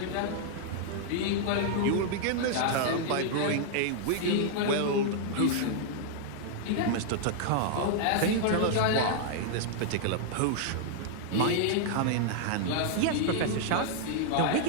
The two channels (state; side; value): different; both; correlation -0.01